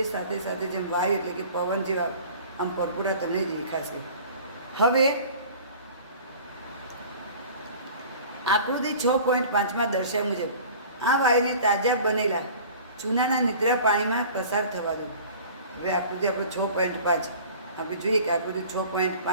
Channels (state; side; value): inverted; both; correlation -0.44